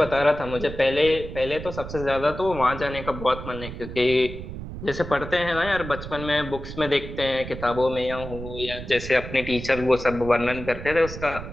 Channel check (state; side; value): noise; right; rumble, 10 dB below the sound